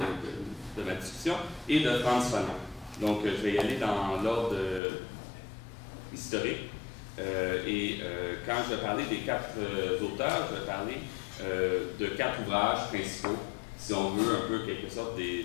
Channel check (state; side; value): drops out; right; at 4.8 s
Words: de ma discussion, et de Frantz Fanon. Donc, je vais y aller dans l'ordre historique. Quand je vais parler des 4 auteurs, je vais parler de 4 ouvrages principaux, si on veut un peu quelque sorte des